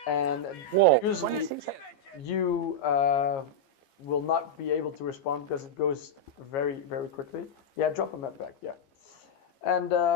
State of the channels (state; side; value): late; right; 15 ms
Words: And usually you will not be able to respond because it goes very quickly. Yeah, drop a med pack. Yeah, and